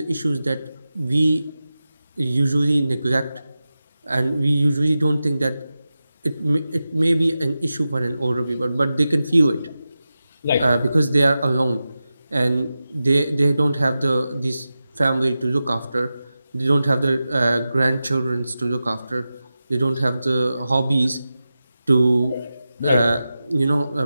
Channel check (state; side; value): inverted; both; correlation -0.93